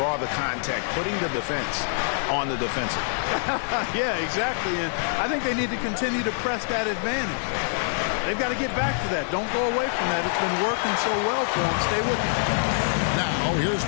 the contact, putting the defense on the defensive. Yeah, exactly. And I think they need to continue to press that advantage. They've got to get back to that. Don't go away from that. It's been working so well for them. Stay with it. Now here's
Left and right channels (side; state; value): right; silent; 61 dB below the other